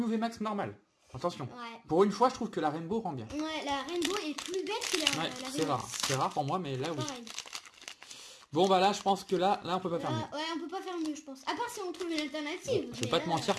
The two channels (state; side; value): identical; both; correlation 1.00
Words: VMAX normal. Attention. Ouais. Pour une fois, je trouve que la Rainbow rend bien. Ouais, la Rainbow est plus belle que la Ouais, la c'est rare. VMAX. C'est rare pour moi, mais là, oui. Pareil. Bon, bah là, je pense que là, on peut pas faire mieux. Ouais, on peut pas faire mieux, je pense. À part si on trouve une alternative. Je vais mais pas là, te mentir